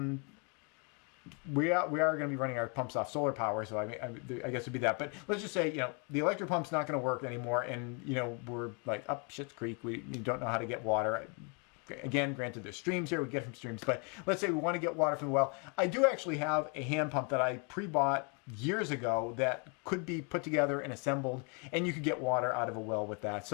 We are going to be running our pumps off solar power, so I guess it'd be that. But let's just say, the electric pump's not going to work anymore, and we're like up Schitt's Creek. We don't know how to get water. Again, granted, there's streams here. We get from streams, but let's say we want to get water from the well. I do actually have a hand pump that I pre-bought years ago that could be put together and assembled, and you could get water out of a well with that.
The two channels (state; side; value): quieter; right; 35.7 dB